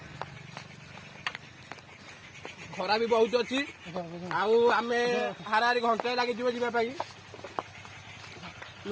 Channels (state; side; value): identical; both; correlation 1.00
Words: ଖରା ବି ବହୁତ ଅଛି ଆଉ ଆମେ ହାରାହାରି ଘଣ୍ଟାଏ ଲାଗିଯିବ ଯିବା ପାଇଁ